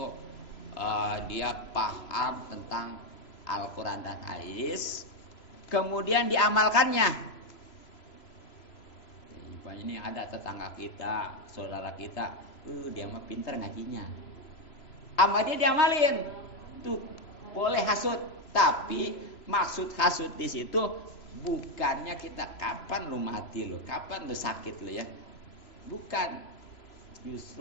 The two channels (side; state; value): right; late; 3.0 ms